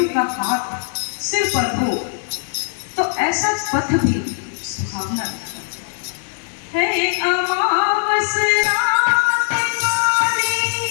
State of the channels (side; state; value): right; silent; digital silence